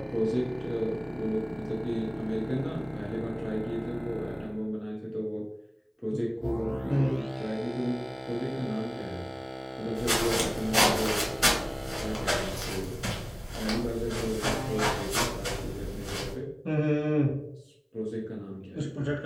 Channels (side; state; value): both; identical; correlation 1.00